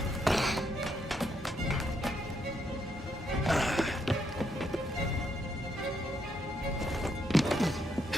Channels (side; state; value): both; normal; correlation 0.76